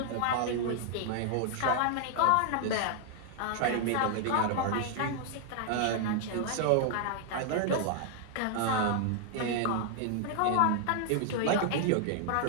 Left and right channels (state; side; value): different; both; correlation 0.00